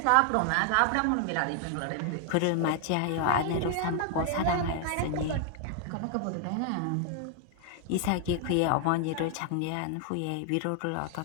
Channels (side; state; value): both; different; correlation 0.00